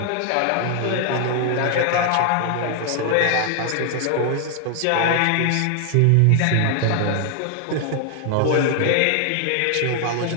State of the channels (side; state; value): both; different; correlation 0.00